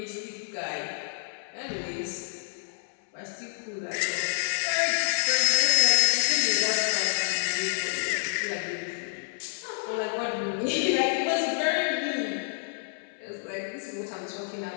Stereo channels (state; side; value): silent; right; 59 dB below the other